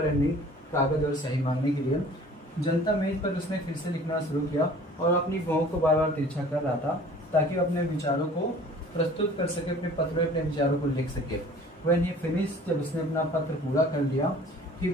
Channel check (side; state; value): both; normal; correlation 0.48